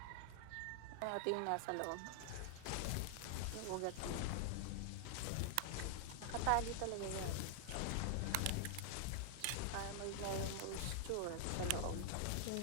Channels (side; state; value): both; different; correlation -0.01